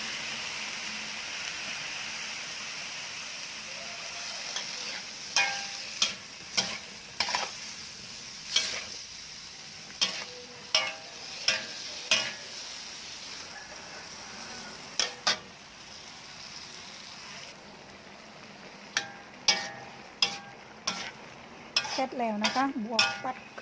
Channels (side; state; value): both; identical; correlation 1.00